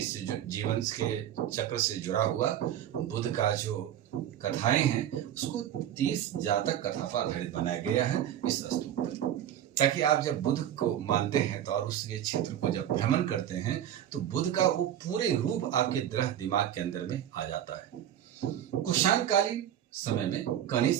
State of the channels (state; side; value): quieter; left; 10.9 dB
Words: जीवन के चक्र से जुड़ा हुआ बुद्ध का जो कथाएं हैं, उसको 30 जातक कथा पर आधारित बनाया गया है इस स्तूप पर, ताकि आप जब बुद्ध को मानते हैं तो और उसके क्षेत्र को जब भ्रमण करते हैं तो बुद्ध का वो पूरे रूप आपके दृढ़ दिमाग के अंदर में आ जाता है। कुषाणकालीन समय में